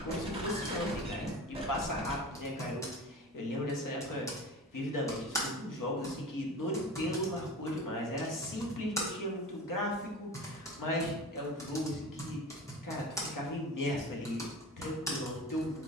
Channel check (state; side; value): normal; both; correlation 0.33